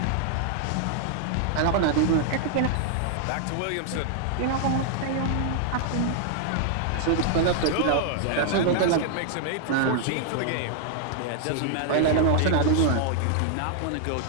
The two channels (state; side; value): different; both; correlation 0.00